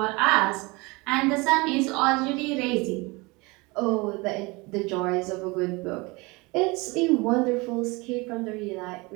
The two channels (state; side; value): quieter; left; 25.3 dB